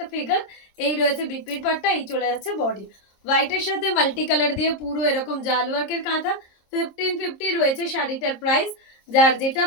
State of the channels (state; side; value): late; right; 26 ms